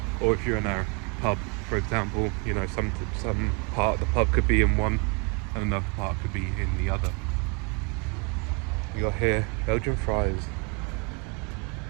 Or if you're in a pub, for example, you know, some part of the pub could be in one and another part could be in the other. You got here Belgian fries.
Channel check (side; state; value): left; quieter; 32.4 dB